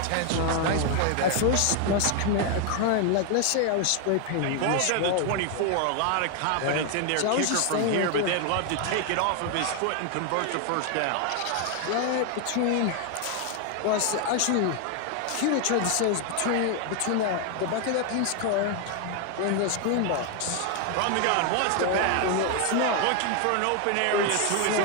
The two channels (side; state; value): both; different; correlation 0.00